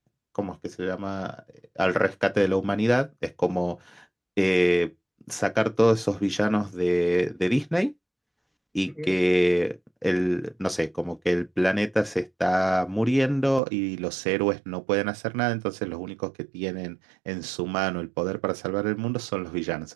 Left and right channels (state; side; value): drops out; left; at 13.6 s